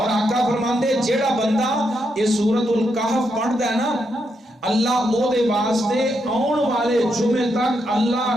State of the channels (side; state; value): both; normal; correlation 0.81